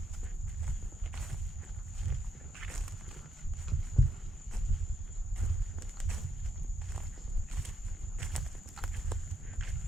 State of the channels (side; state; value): both; normal; correlation 0.76